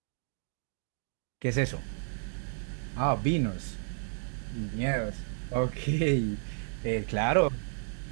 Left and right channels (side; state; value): left; silent; digital silence